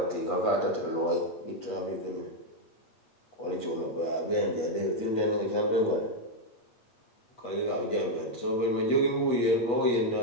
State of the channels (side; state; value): right; late; 8.4 ms